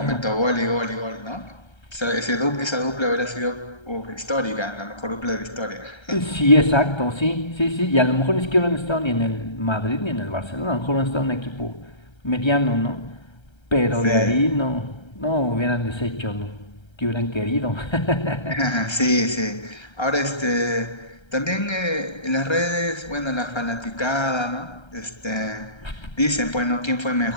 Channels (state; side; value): late; right; 1.3 ms